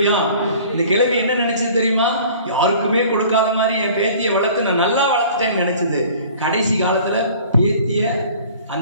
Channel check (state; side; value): inverted; both; correlation -0.48